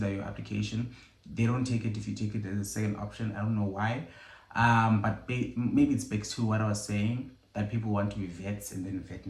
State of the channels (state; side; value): identical; both; correlation 1.00